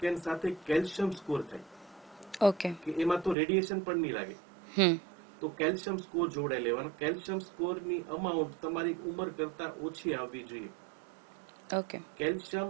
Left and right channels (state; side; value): drops out; left; at 3.4 s